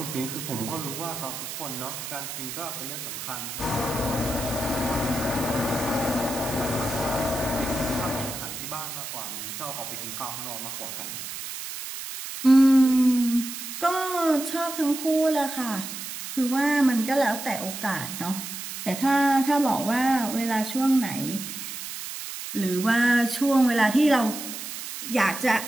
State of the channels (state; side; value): noise; right; hiss, 8 dB below the sound